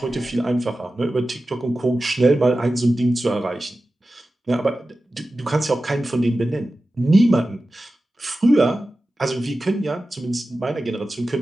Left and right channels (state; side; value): normal; both; correlation 0.94